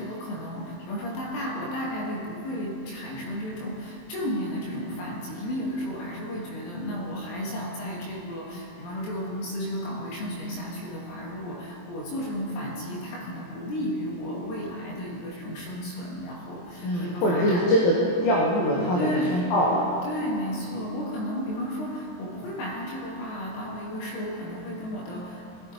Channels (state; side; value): late; right; 23 ms